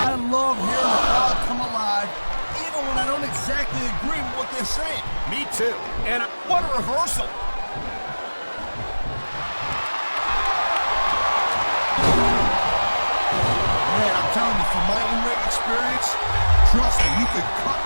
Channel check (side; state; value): both; inverted; correlation -1.00